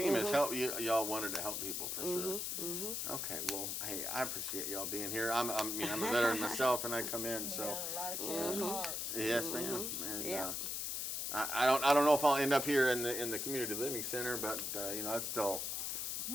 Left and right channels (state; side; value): noise; left; hiss, 2 dB below the sound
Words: is help. Y'all wanted to help people for sure. Okay, well, hey, I appreciate y'all being here. I'm a veteran myself, and I come in, so Yeah, a lot of caring hearts. yes, ma'am. And Yeah. I don't know if I'll end up here in the community living center, but you know, that's still